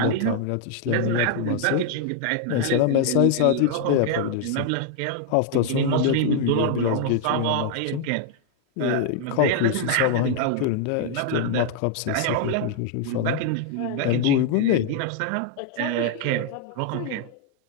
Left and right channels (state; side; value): different; both; correlation 0.00